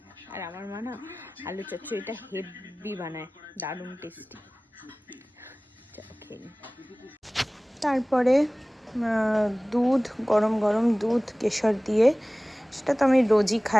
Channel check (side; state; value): both; normal; correlation 0.98